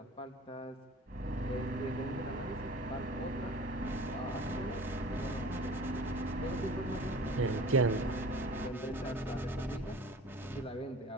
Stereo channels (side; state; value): both; normal; correlation 0.42